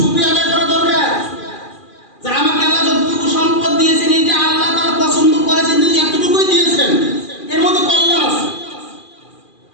আদায় করা দরকার, যে আমাকে আল্লাহ যতটুকু সম্পদ দিয়েছেন, এটা আল্লাহ তাআলা পছন্দ করেছেন, তিনি এতটুকুই দিয়েছেন, এর মধ্যে কল্যাণ আছে।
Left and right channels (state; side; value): late; right; 2.4 ms